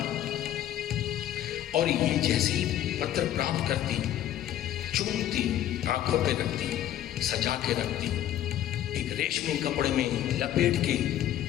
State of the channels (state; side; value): quieter; right; 12.0 dB